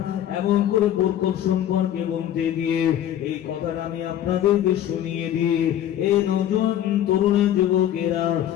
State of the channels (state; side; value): quieter; right; 11.3 dB